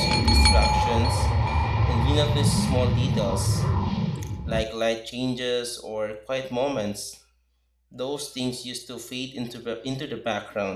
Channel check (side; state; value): both; identical; correlation 1.00